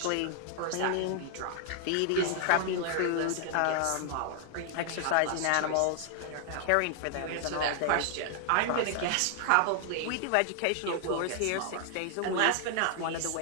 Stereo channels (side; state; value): both; different; correlation 0.00